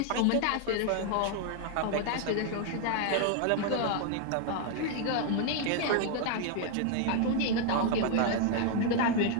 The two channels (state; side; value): different; both; correlation 0.00